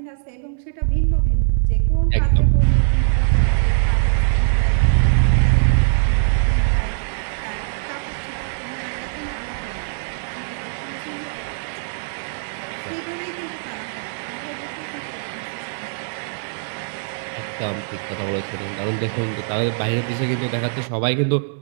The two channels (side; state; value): left; silent; digital silence